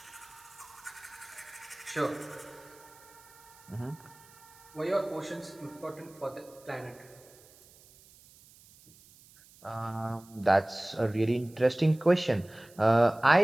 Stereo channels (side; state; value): right; noise; hiss, 25 dB below the sound